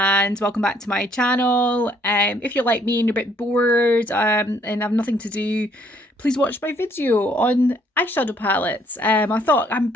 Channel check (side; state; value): both; normal; correlation 0.65